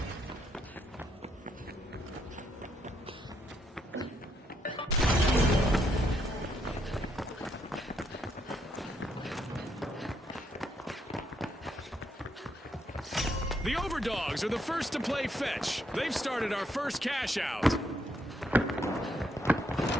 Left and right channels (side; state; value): both; normal; correlation 0.75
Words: The Overdogs are the first to play fetch. They've started our first cash out.